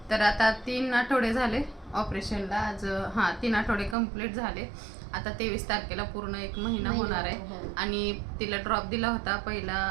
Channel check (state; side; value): drops out; left; at 4.0 s